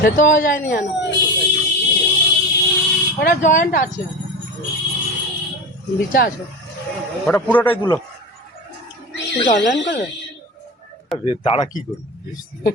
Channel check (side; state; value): both; normal; correlation 0.26